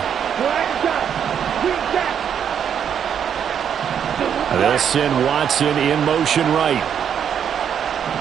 They'll send Watson in motion right.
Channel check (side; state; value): left; quieter; 8.3 dB